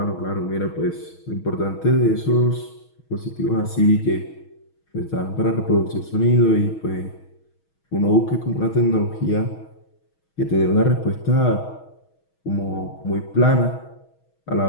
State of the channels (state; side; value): late; right; 6.3 ms